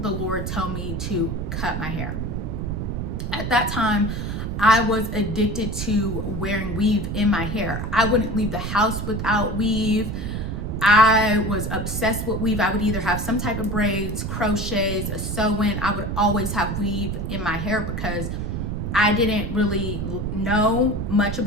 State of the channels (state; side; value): noise; right; rumble, 3 dB below the sound